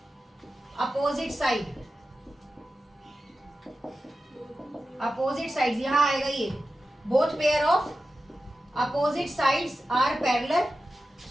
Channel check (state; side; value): normal; both; correlation 0.93